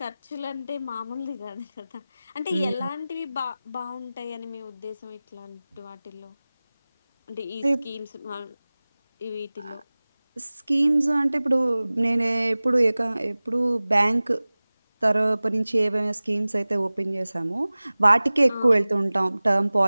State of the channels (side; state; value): both; inverted; correlation -0.98